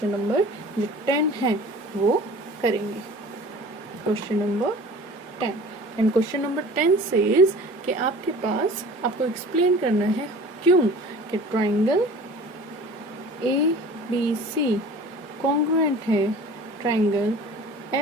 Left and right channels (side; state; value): both; normal; correlation 0.43